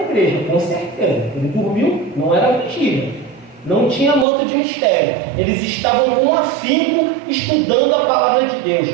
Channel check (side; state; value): left; drops out; at 4.2 s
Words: com certeza. Ele dormiu, não era mentira. Não tinha manto de mistério. Eles estavam com afinco estudando a palavra de